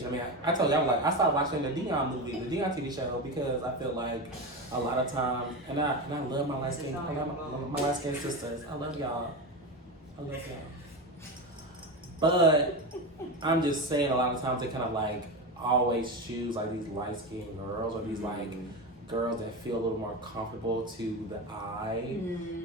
I mean, I told you, I was like, I started watching the Dion movie, the Dion TV show, because I feel like a lot of times, and I love my light skin, my light skin sisters. I love y'all. But I'm just saying a lot of times they kind of like always choose like these light skinned girls or these like girls that feel a little more comfortable to the eye.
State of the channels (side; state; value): both; normal; correlation 0.20